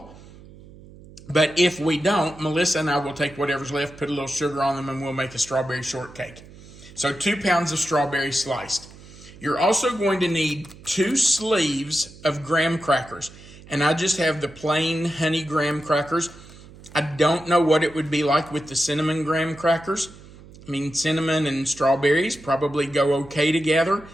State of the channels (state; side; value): noise; right; hum, 20 dB below the sound